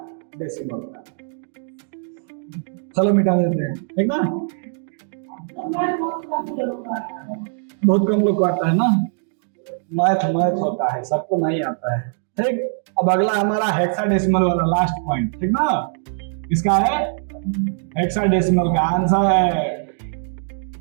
का। चलो मिटा देते हैं, ठीक ना। बहुत कम लोग को आता है ना, मैथ होता है, सबको नहीं आता है, ठीक। अब अगला हमारा हेक्साडेसिमल वाला लास्ट पॉइंट, ठीक ना। इसका है हेक्साडेसिमल का आंसर है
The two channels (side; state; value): left; silent; digital silence